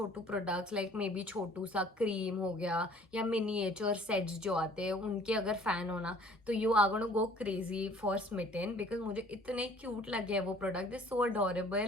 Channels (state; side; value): normal; both; correlation 0.54